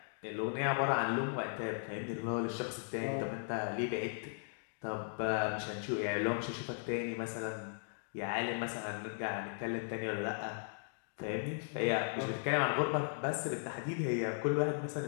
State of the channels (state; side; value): silent; right; digital silence